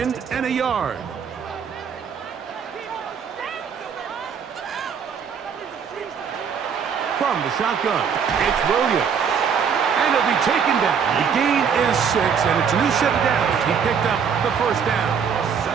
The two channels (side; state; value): left; quieter; 6.9 dB